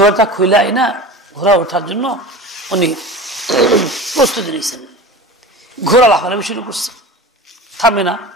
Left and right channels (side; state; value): both; normal; correlation 0.33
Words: খুইলাই না, ঘোড়া ওঠার জন্য উনি প্রস্তুতি নিয়েছেন। ঘোড়া লাফালাফি শুরু করছে, থামে না,